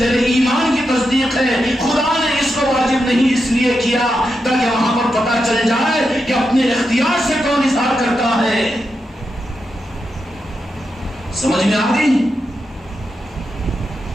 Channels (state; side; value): normal; both; correlation 0.86